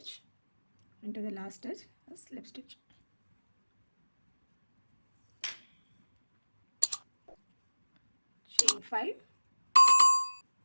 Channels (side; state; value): both; inverted; correlation -1.00